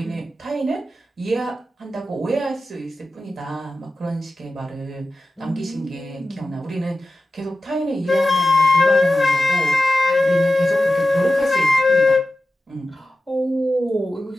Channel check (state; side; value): normal; both; correlation 0.93